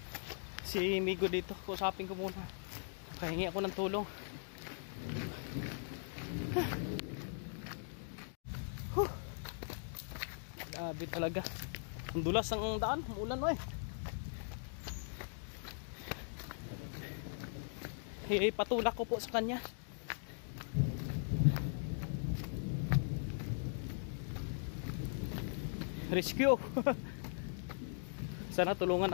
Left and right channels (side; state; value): right; silent; digital silence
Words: Si Migo dito. Kusapin ko muna. Pahingi ako ng tulong. Grabe talaga. Ang dulas ang daan, umulan mo eh. Patulak ko po sa kanya. Rescue. Sana tulungan